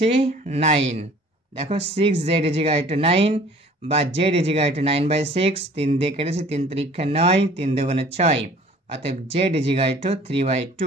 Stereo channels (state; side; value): normal; both; correlation 0.51